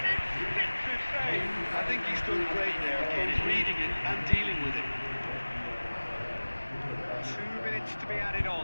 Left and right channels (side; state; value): both; inverted; correlation -1.00